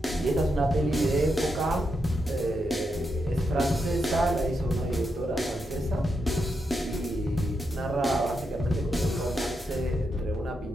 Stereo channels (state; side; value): normal; both; correlation 0.84